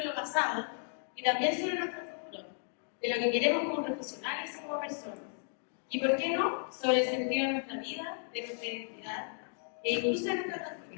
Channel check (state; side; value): silent; right; 55 dB below the other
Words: lo pasado y también sobre nuestro futuro, de lo que queremos como profesionales y como personas. Y por qué no, sobre el sentido de nuestra vida, de nuestra identidad e incluso de nuestra